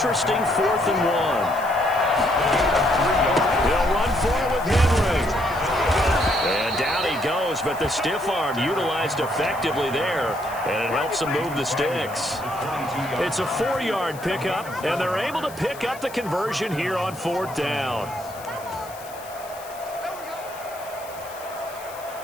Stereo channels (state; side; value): noise; left; hiss, 18 dB below the sound